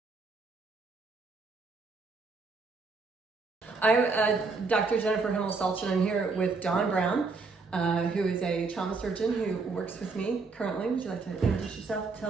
I'm Dr. Jennifer Himmel Salch, and I'm here with Dawn Brown, who is a trauma surgeon who works with me currently. Would you like to introduce yourself,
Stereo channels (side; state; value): left; quieter; 4.1 dB